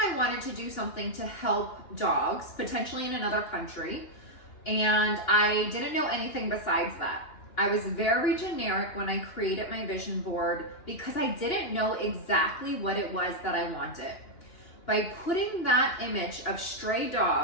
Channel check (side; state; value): right; late; 2.9 ms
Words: wanted to do something to help dogs, potentially in another country, and I didn't know anything besides that. I was very generic when I created my vision board because I didn't know exactly what it was that I wanted. By putting that image of stray